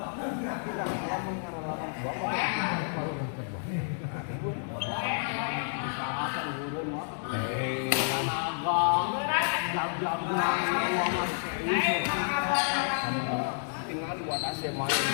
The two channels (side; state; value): right; silent; digital silence